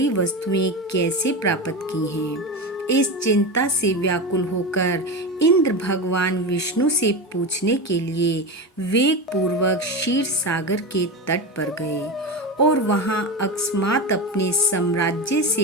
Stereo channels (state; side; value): normal; both; correlation 0.21